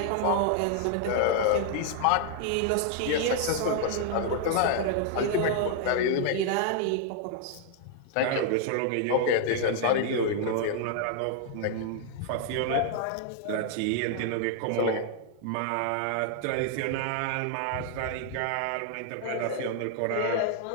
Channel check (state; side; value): different; both; correlation 0.00